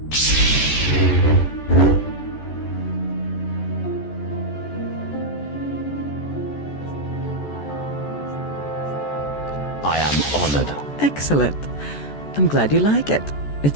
I am honored. Excellent. I'm glad you like it.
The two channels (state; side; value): late; right; 14 ms